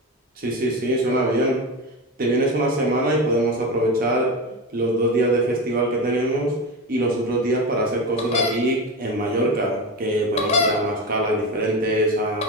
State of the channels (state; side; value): normal; both; correlation 0.21